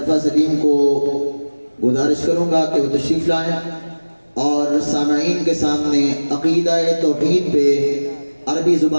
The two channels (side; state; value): both; inverted; correlation -1.00